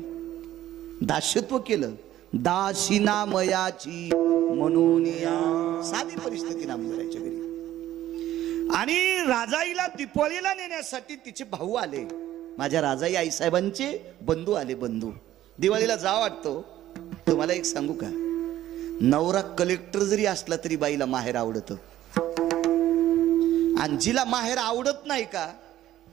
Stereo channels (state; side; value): quieter; left; 13.4 dB